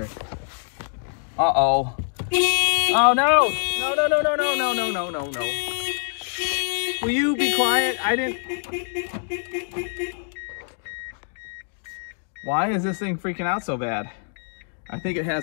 Uh-oh. Oh, no. No, no, no, no, no, no, no, no, no, no. Will you be quiet? I didn't... Why is this thing freaking out so bad? I think it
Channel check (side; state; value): right; silent; 62 dB below the other